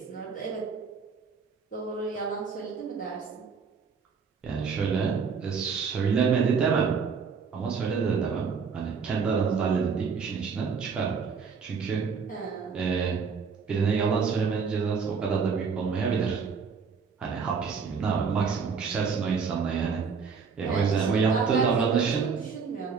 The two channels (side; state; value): left; quieter; 5.6 dB